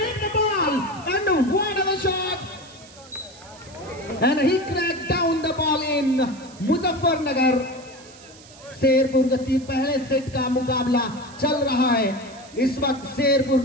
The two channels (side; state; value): right; noise; hiss, 22 dB below the sound